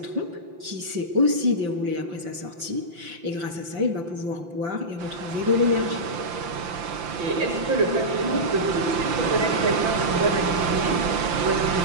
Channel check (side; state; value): left; late; 5.8 ms